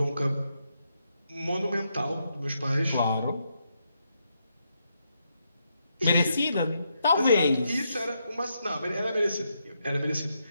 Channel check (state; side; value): inverted; both; correlation -0.81